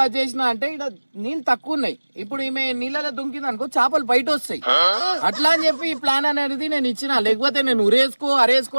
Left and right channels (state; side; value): inverted; both; correlation -1.00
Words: అది చేసిన అంటే ఈడ నీళ్ళు తక్కువ ఉన్నాయి. ఇప్పుడు ఈమె నీళ్ళలో దుంకింది అనుకో చేపలు బయట వస్తాయి. అట్లా అని చెప్పి ఈ ప్లాన్ అనేది నేను ఇచ్చిన, లేకపోతే నేను ఉరేసుకో అరేసుకో